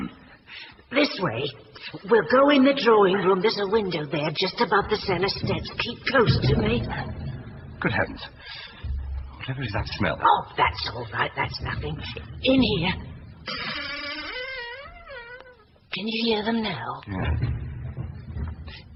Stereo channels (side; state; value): both; identical; correlation 1.00